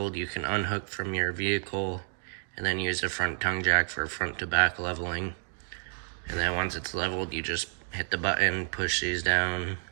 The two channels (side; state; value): left; silent; 58 dB below the other